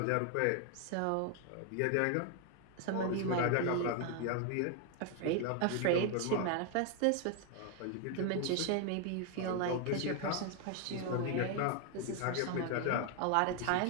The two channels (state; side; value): different; both; correlation 0.00